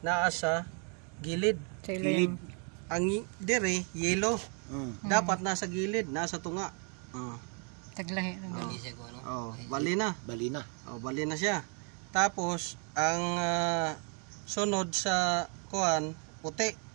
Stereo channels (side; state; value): left; quieter; 38.3 dB